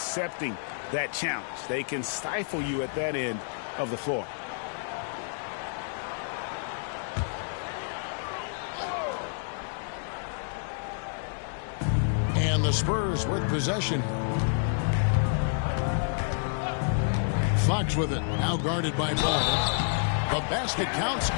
that challenge. They can stifle you at that end of the floor. And the Spurs with possession. Fox with it, now guarded by Ball. The basket counts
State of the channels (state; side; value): silent; right; digital silence